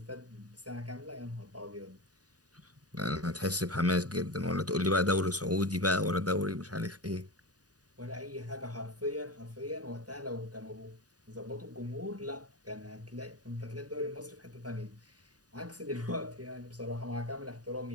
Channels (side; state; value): left; late; 0.68 ms